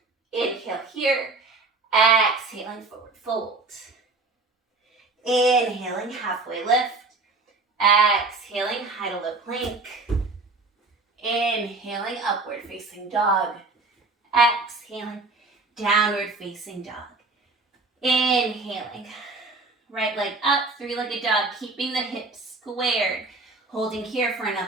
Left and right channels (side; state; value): left; quieter; 3.6 dB